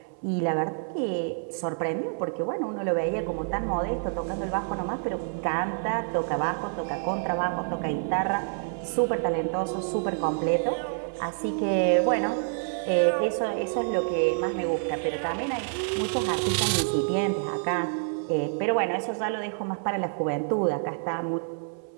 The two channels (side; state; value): left; silent; 60 dB below the other